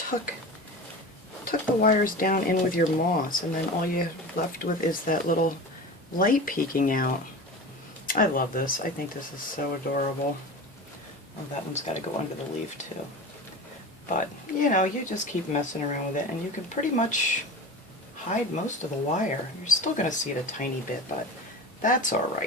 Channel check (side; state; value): both; normal; correlation 0.32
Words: the wires down in with your moss, and then all you're left with is that little light peeking out. I love this. I think this is so adorable. Oh, that one's got to go under the leaf too. But, you know, you just keep messing around with it, and you can pretty much hide most of the wire. You're still going to see it a tiny bit, but that's